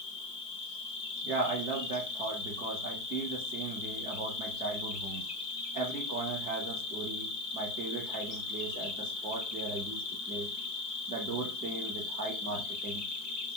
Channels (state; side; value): late; right; 4.7 ms